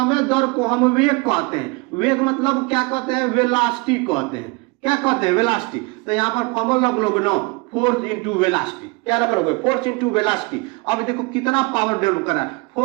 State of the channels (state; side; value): quieter; left; 27.8 dB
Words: दर को हम वेग कहते हैं। वेग मतलब क्या कहते हैं, वेलोसिटी कहते हैं। क्या कहते हैं, वेलोसिटी। तो यहाँ पर फॉर्मूला लोग नो, फोर्स इंटू वेलोसिटी, क्या करोगे, फोर्स इंटू वेलोसिटी। अब देखो कितना पावर डेवलप कर रहा है,